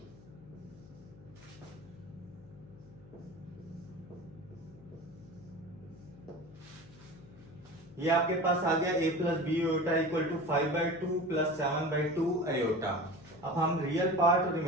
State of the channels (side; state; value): left; noise; hum, 20 dB below the sound